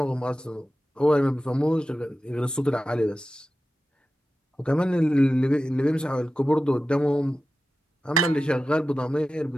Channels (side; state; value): both; normal; correlation 0.93